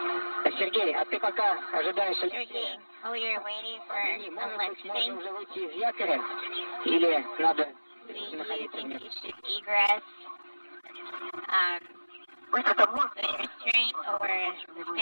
Сергей, а ты пока ожидаешь... Sergey, oh, you're waiting for a lifting? Уже выйти из якоря? Или надо Do you находиться think вместе? you should egress with restraint or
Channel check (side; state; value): both; inverted; correlation -1.00